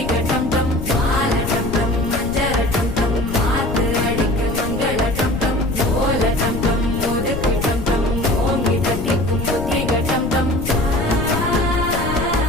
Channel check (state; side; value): noise; left; rumble, 6 dB below the sound